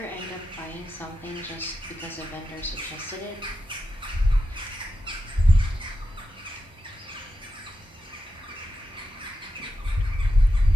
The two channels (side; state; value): both; normal; correlation 0.88